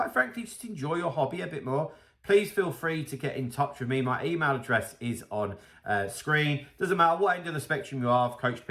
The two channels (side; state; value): both; identical; correlation 1.00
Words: frankly, just enjoy your hobby a bit more, please feel free to get in touch with me. My email address is on screen. Doesn't matter what end of the spectrum you are. I've coached